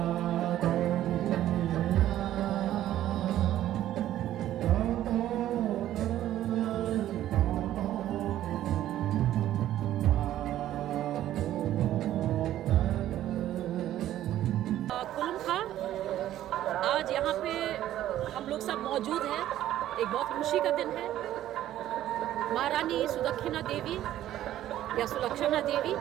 आज यहाँ पे हम लोग सब मौजूद हैं। एक बहुत खुशी का दिन है। महारानी सुदक्षिणा देवी या सुलक्षणा देवी,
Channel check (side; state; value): left; quieter; 12.9 dB